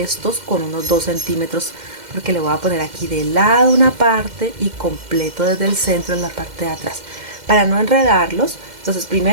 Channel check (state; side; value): late; left; 2.1 ms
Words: estos con unos 2 centímetros, porque le voy a poner aquí de lado una parte y completo desde el centro en la parte de atrás, para no enredarlos. Entonces